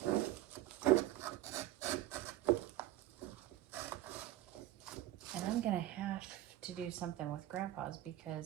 And I'm going to have to do something with Grandpa's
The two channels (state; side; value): quieter; left; 14.4 dB